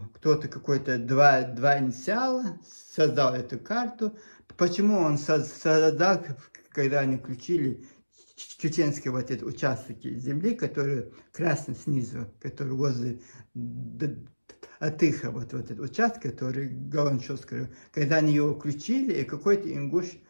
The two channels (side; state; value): both; inverted; correlation -1.00